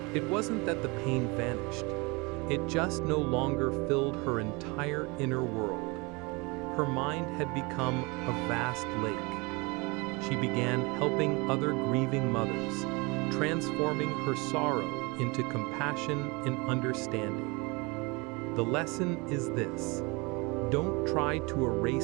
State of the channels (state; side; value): quieter; left; 27.1 dB